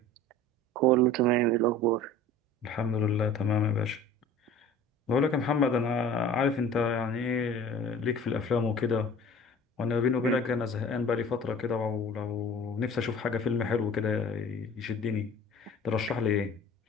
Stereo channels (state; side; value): normal; both; correlation 0.43